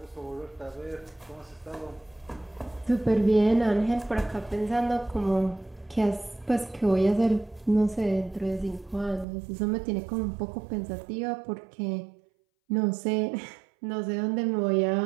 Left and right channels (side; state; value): left; drops out; at 9.2 s